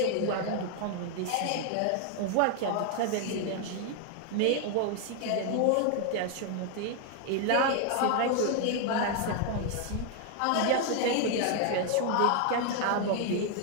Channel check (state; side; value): different; both; correlation 0.00